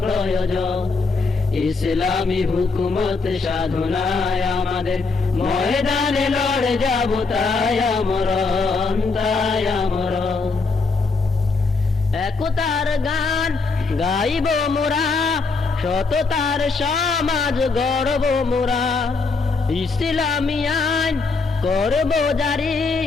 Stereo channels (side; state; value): right; quieter; 4.2 dB